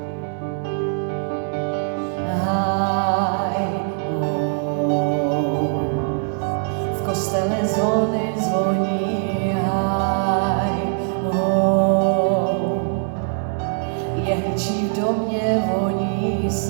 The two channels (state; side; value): silent; left; 64 dB below the other